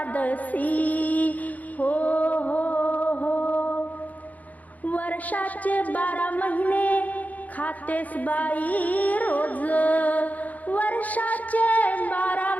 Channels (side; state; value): right; late; 0.076 ms